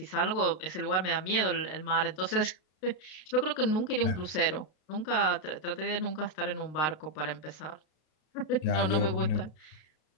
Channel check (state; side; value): late; right; 32 ms